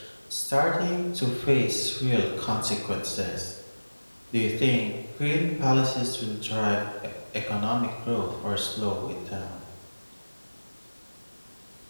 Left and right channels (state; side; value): inverted; both; correlation -1.00